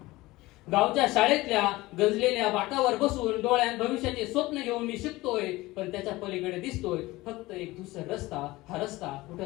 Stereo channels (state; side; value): quieter; right; 19.6 dB